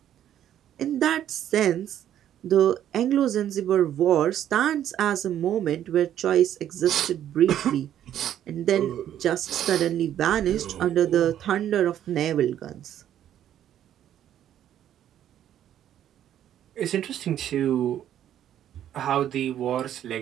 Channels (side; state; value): left; quieter; 10.9 dB